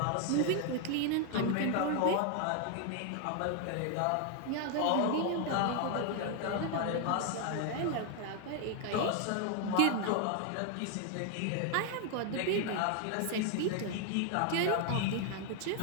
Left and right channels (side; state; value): both; different; correlation 0.00